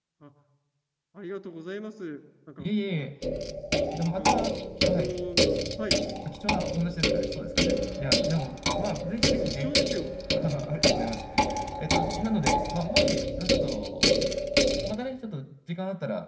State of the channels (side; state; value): both; identical; correlation 1.00